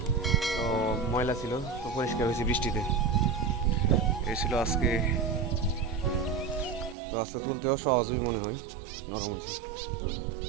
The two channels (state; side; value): drops out; left; at 7.0 s